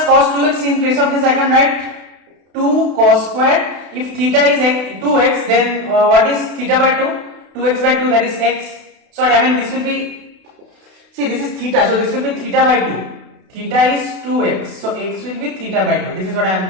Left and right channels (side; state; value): left; late; 32 ms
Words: cos 2x, in place of this I can write 2 cos squared. If theta is 2x, then what is theta by 2? 2x by 2, that is x. Sorry, I mean this will be, see this is theta, so this will be theta by 2. Theta is 2x, so x will be theta by 2. This is what I am